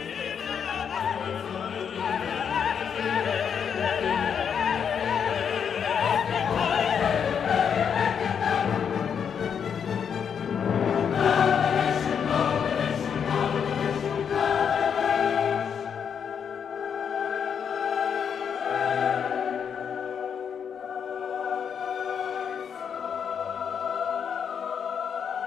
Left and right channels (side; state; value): right; quieter; 7.4 dB